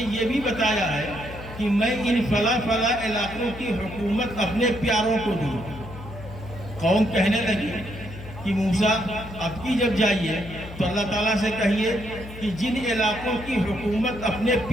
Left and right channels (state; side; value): noise; left; hum, 13 dB below the sound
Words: بھی بتایا ہے کہ میں ان فلاں فلاں علاقوں کی حکومت اپنے پیاروں کو دوں۔ قوم کہنے لگی کہ موسیٰ اب کی جب جائیے تو اللہ تعالیٰ سے کہیے کہ جن علاقوں کی حکومت اپنے